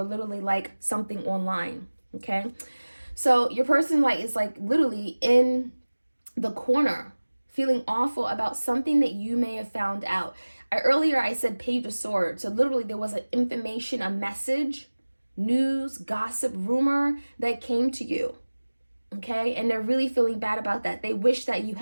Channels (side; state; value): both; inverted; correlation -1.00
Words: literally like something online. Okay, so your person like is like literally in the corner, feeling awful about something that you may have found out. Earlier I said Page of Swords. So literally there was an information, a message, news, gossip, rumor that came to you. Okay, and they're really feeling bad about that. They wish that you